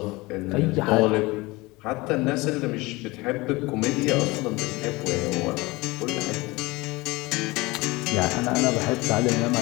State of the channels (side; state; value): right; quieter; 22.4 dB